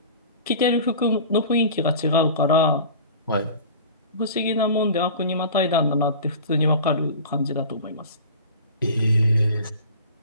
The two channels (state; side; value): inverted; both; correlation -0.39